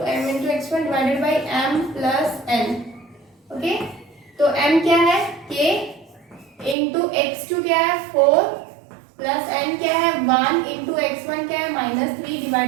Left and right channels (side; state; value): left; drops out; at 6.8 s